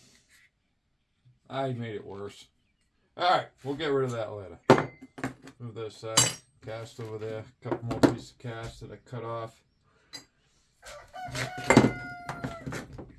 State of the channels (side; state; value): both; identical; correlation 1.00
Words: I made it worse. Alright, we'll get rid of that later. Move this cast over there. A couple more pieces of cast that I cut off.